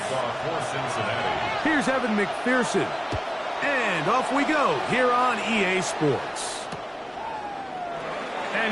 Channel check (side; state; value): both; identical; correlation 1.00